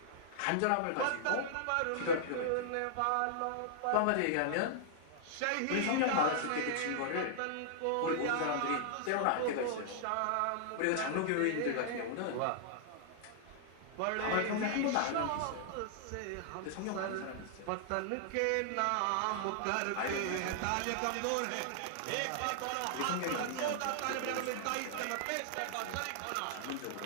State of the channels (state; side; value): different; both; correlation -0.01